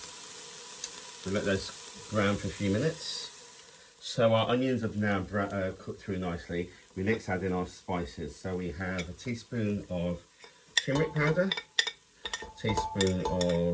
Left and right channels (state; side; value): identical; both; correlation 1.00